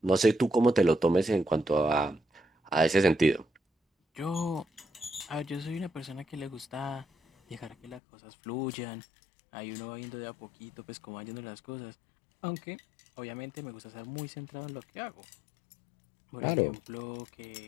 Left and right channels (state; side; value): drops out; right; at 8.0 s